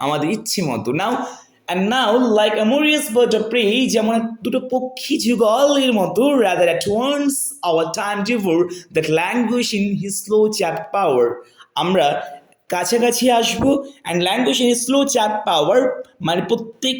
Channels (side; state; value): both; identical; correlation 1.00